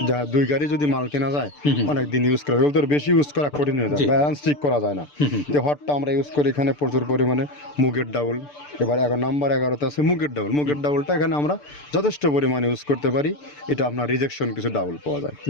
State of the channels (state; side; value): late; right; 6.8 ms